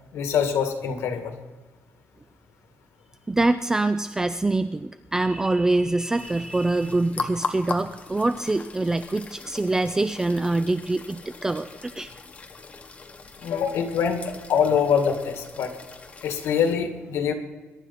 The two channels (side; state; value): both; normal; correlation 0.78